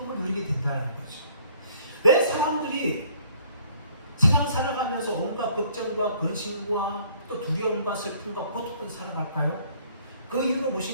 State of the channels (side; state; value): both; inverted; correlation -0.59